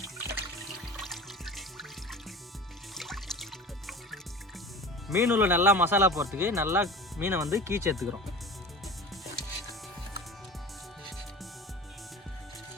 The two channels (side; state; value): both; normal; correlation 0.35